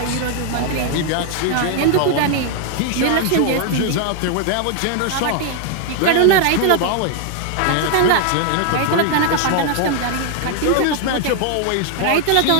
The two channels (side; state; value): both; different; correlation 0.00